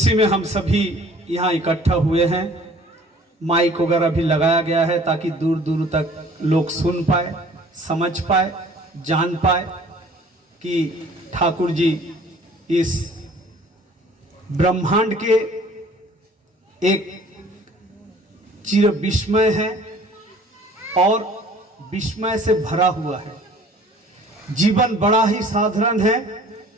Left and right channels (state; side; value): normal; both; correlation 0.52